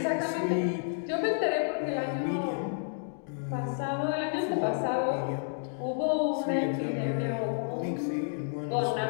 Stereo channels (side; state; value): right; silent; digital silence